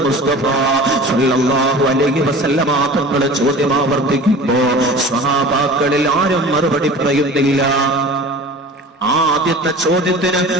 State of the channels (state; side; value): normal; both; correlation 0.39